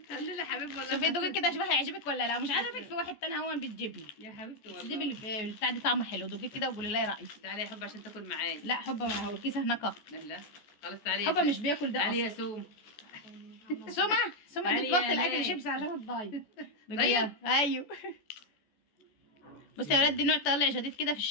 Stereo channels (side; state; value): right; late; 14 ms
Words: خلي لي حبيبي والله. شوفي دوقي كده شوفي هيعجبك ولا لا. مش عاجبك في واحد تاني هو بتجيبني يا حبيبتي والله. دي البتاع دي طعمه حلو. دوقي كده وقولي لي رايك. تعالي يا حبه عشان تاكل معايا. لا حبه ما هو الكيس هناك. لا خلاص تعالي. حبه مش بياكل ده تعالي اصلا. يا سوم. سمع علي تتبطل يا اكل ليه؟ شيبسي عشان الدايت. دايت؟ ايوه. بصي يا ولاد، دي نوع طالع جديد كده في